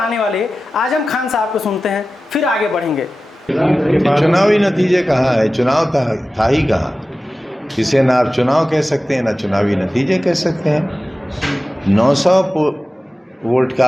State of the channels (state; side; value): normal; both; correlation 0.95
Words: वाले आजम खान साहब को सुनते हैं, फिर आगे बढ़ेंगे। चुनावी नतीजे कहाँ है? चुनाव था ही कहाँ? इसे ना आप चुनाव कह सकते हैं ना चुनावी नतीजे कह सकते हैं। 900 वोट